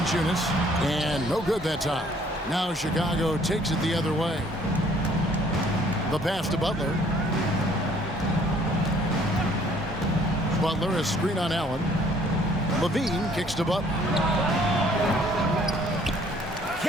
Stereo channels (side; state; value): both; normal; correlation 0.60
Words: And no good that time. Now Chicago takes it the other way. The pass to Butler. Butler, a screen on Allen. LaVine kicks to Butler.